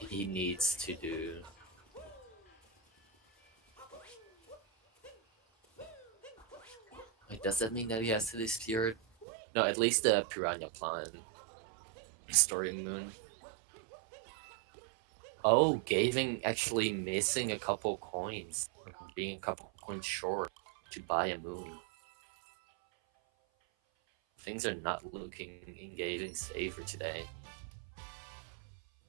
needs to do Wait, does that mean that he has to do Spirit? No, at least the Piranha Plant Story Moon. Oh, Gaving actually missing a couple coins, being a couple coins short to buy a moon. Things are not looking in Gaving's favor today.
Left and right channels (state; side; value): drops out; left; at 9.2 s